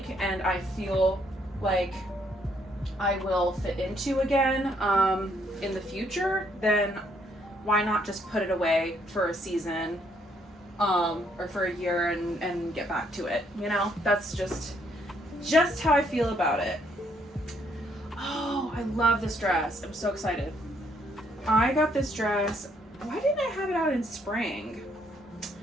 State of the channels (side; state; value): both; normal; correlation 0.70